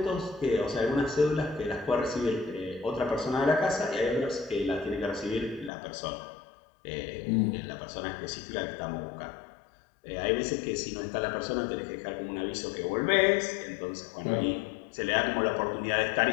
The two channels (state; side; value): drops out; right; at 5.7 s